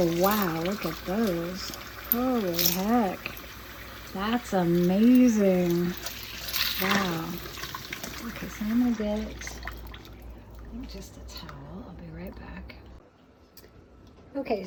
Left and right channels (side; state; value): both; identical; correlation 1.00